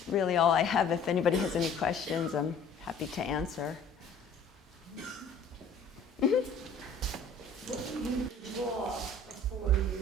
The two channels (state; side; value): quieter; right; 3.6 dB